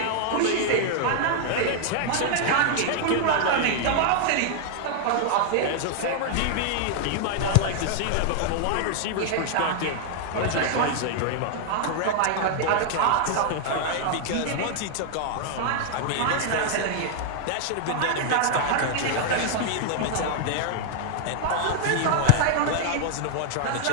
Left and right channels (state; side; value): different; both; correlation -0.01